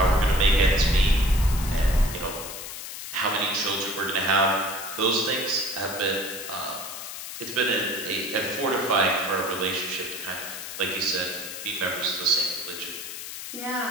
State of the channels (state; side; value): noise; left; hiss, 9 dB below the sound